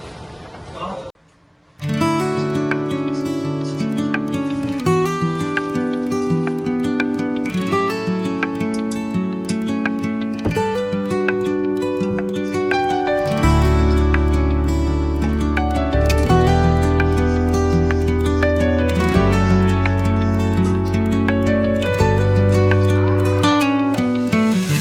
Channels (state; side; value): identical; both; correlation 1.00